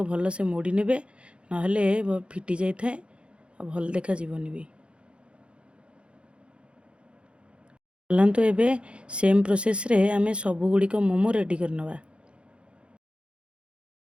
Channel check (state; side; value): late; left; 0.057 ms